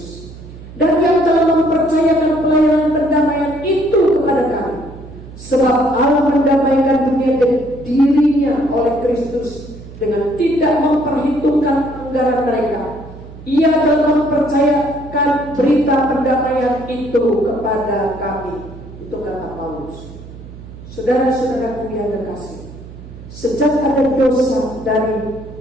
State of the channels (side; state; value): right; noise; hum, 16 dB below the sound